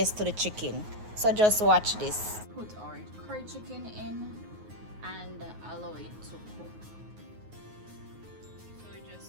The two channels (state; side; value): late; left; 9.5 ms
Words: to the chicken. So just watch this. Put our curry chicken in and allow it to cook. So we're